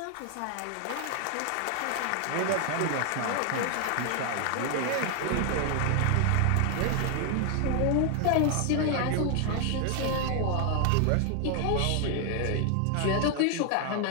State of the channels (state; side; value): different; both; correlation 0.00